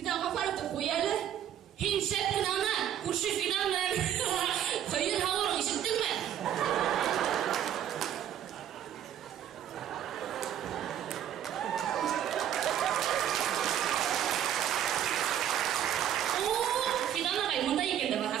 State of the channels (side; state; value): left; quieter; 10.3 dB